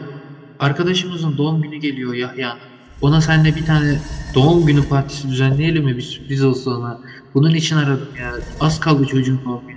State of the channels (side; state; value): both; identical; correlation 1.00